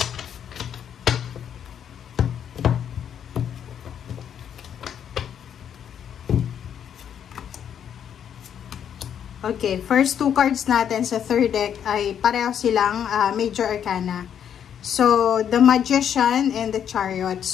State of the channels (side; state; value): right; quieter; 8.8 dB